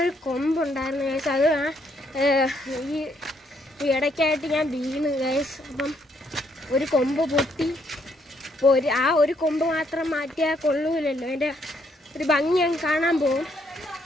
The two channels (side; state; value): both; normal; correlation 0.71